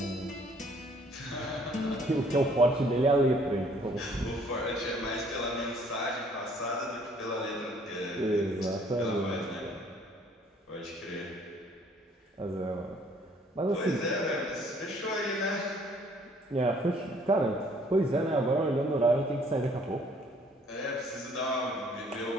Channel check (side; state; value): both; normal; correlation 0.60